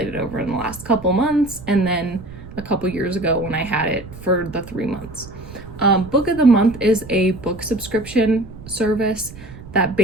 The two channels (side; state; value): right; noise; rumble, 16 dB below the sound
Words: over in the last couple months, and then a couple years ago when I had it for the 3 months. Book of the Month is a book subscription service that